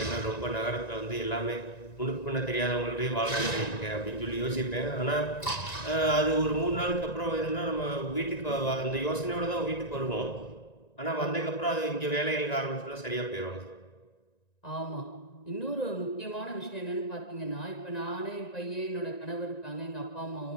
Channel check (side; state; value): right; late; 1.9 ms